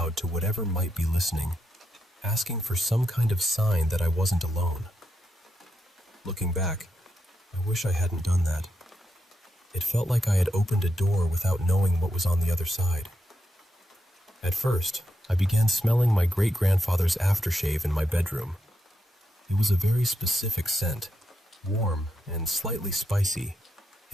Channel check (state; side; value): normal; both; correlation 0.84